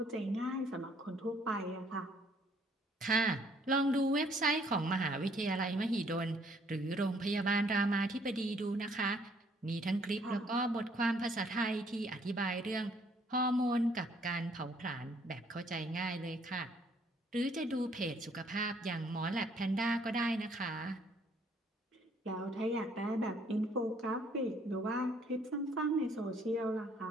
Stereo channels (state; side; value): normal; both; correlation 0.64